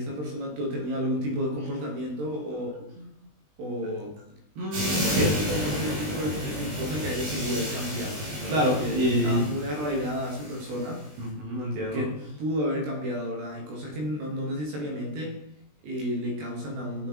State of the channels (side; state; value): left; late; 20 ms